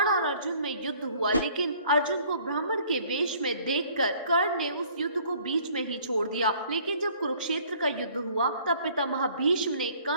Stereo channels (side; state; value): both; inverted; correlation -0.56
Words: और अर्जुन में युद्ध हुआ, लेकिन अर्जुन को ब्राह्मण के वेश में देखकर कर्ण ने उस युद्ध को बीच में ही छोड़ दिया। लेकिन जब कुरुक्षेत्र का युद्ध हुआ, तब पितामह भीष्म ने